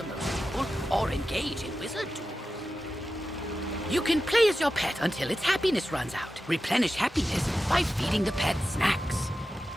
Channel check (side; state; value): both; normal; correlation 0.92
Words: most people or engage in wizard tools. You can play as your pet until its happiness runs out. Replenish happiness by feeding the pet snacks.